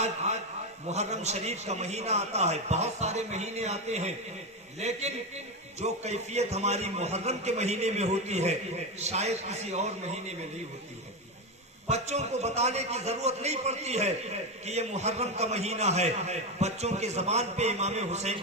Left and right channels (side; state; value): both; normal; correlation 0.13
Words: محرم شریف کا مہینہ آتا ہے، بہت سارے مہینے آتے ہیں، لیکن جو کیفیت ہماری محرم کے مہینے میں ہوتی ہے شاید کسی اور مہینے میں نہیں ہوتی ہے. بچوں کو بتانے کی ضرورت نہیں پڑتی ہے کہ یہ محرم کا مہینہ ہے، بچوں کے زبان پہ امام